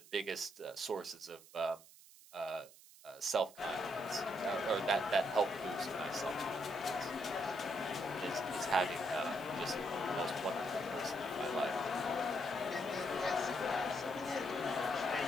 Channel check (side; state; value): right; noise; hiss, 21 dB below the sound